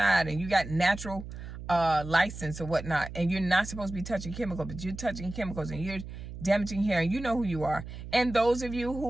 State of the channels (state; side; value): noise; right; hum, 11 dB below the sound